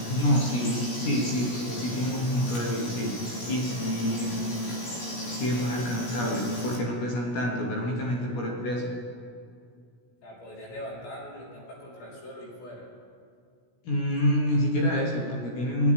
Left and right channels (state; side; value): late; right; 17 ms